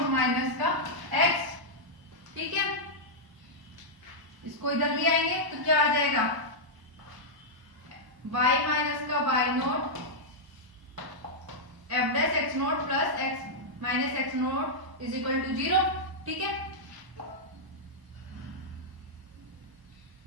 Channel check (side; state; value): left; late; 1.0 ms